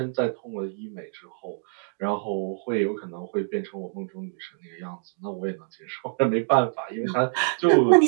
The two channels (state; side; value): silent; left; digital silence